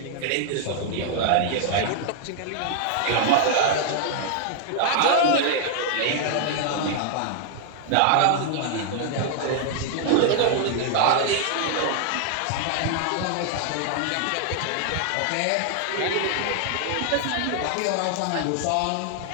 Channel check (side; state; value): both; different; correlation 0.00